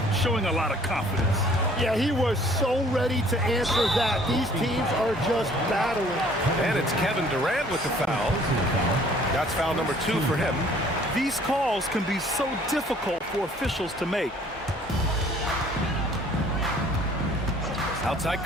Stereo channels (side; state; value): both; normal; correlation 0.56